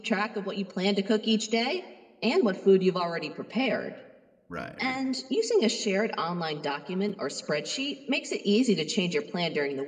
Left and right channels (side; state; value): both; identical; correlation 1.00